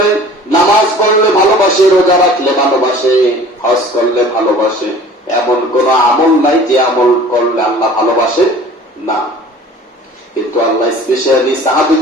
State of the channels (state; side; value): normal; both; correlation 0.46